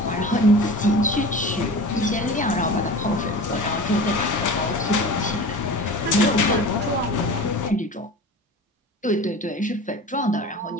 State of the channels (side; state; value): both; normal; correlation 0.36